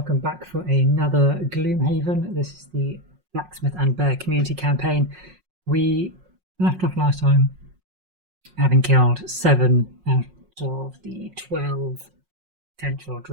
back for another Gloomhaven. This is the Blacksmith and Bear community campaign. We left off last time having killed 7 out of the 12 potential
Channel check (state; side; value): late; left; 5.5 ms